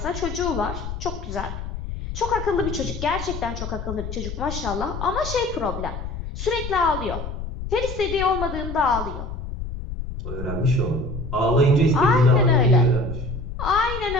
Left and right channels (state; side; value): noise; left; rumble, 7 dB below the sound